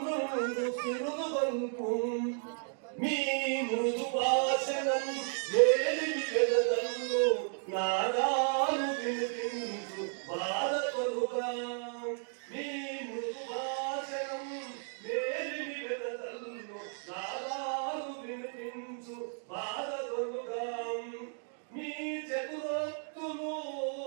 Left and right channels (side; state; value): left; silent; 55 dB below the other